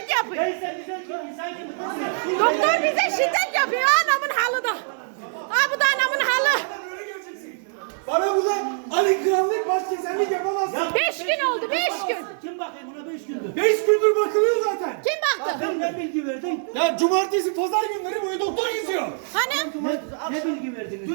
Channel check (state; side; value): silent; left; 62 dB below the other